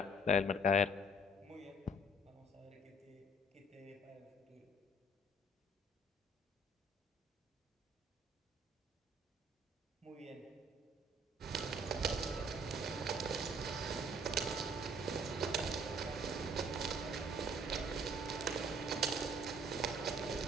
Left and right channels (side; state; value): both; normal; correlation 0.59